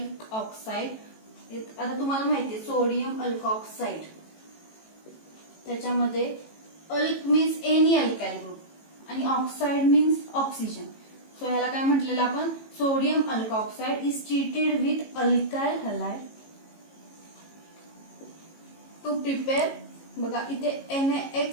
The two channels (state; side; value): late; right; 18 ms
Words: आता तुम्हाला माहितीये सोडियम अल्कऑक्साइड त्याच्यामध्ये alk means any alkyl group आणि ऑक्साइड मीन्स ऑक्सिजन. सो ह्याला काय म्हटलेलं आपण sodium alkoxide is treated with alkyl halide to prepare. बघा इथे